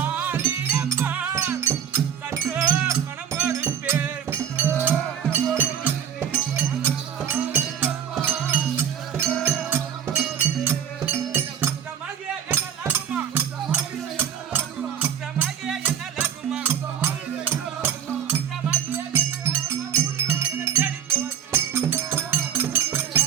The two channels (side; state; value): left; quieter; 8.8 dB